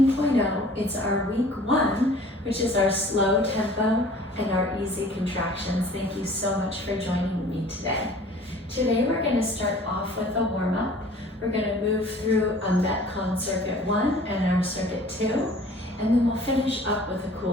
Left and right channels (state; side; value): normal; both; correlation 0.49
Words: It's our week 1, which is our slow tempo and our easy contractions. Thank you so much for joining me today. Today we're going to start off with a warm-up. We're going to move through a MetCon Circuit 1 and our Circuit 2, and then we'll finish up with a